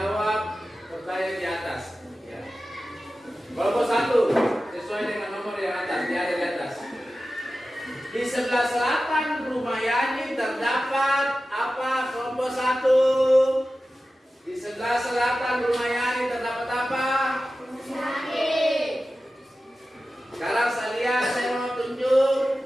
pertanyaan di atas. Ya. Kelompok 1 sesuai dengan nomor yang atas, dia ada di atas. Di sebelah selatan rumah Yani terdapat apa? Kelompok 1. Di sebelah selatan rumah Yani terdapat apa? Sekarang saya mau tunjuk.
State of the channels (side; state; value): both; normal; correlation 0.94